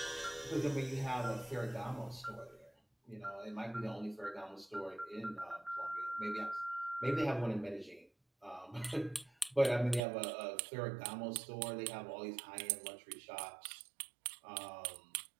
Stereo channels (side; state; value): left; drops out; at 10.0 s